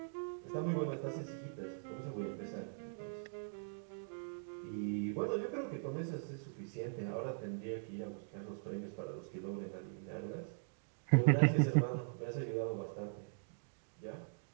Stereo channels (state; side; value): silent; left; digital silence